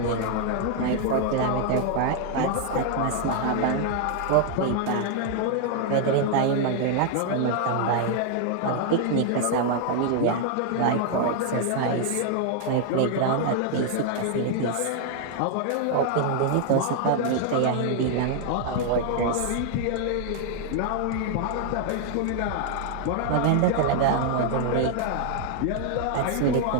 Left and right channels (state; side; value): different; both; correlation 0.00